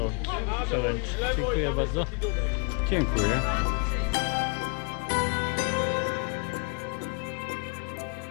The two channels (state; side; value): quieter; right; 35.5 dB